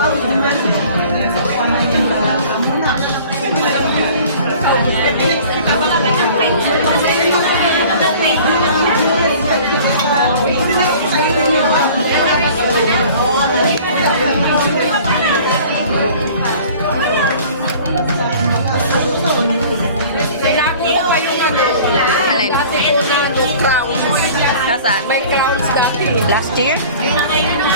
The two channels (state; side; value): inverted; both; correlation -0.47